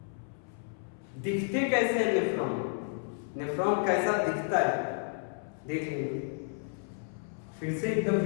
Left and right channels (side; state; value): right; silent; 57 dB below the other